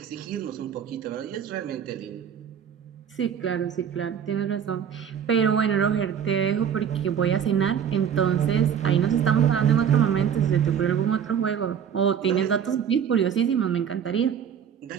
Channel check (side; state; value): left; quieter; 8.2 dB